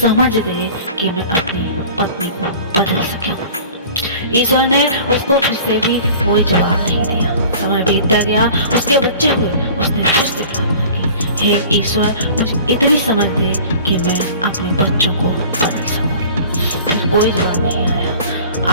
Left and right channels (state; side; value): inverted; both; correlation -0.44